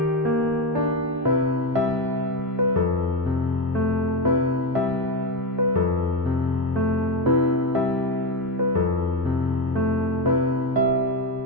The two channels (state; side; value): normal; both; correlation 0.13